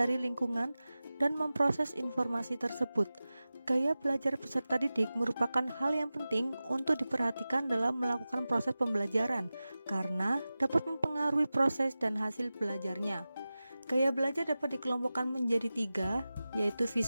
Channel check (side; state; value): both; inverted; correlation -0.96